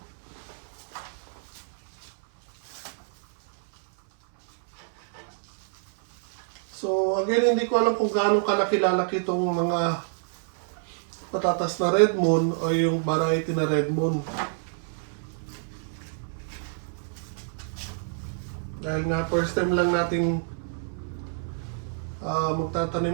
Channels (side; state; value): left; silent; 60 dB below the other